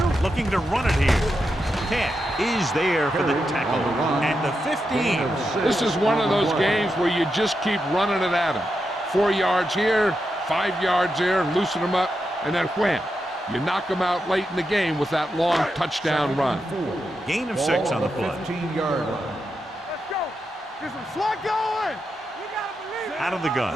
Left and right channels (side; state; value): both; normal; correlation 0.86